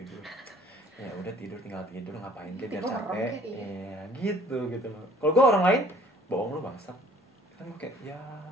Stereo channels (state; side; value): normal; both; correlation 0.55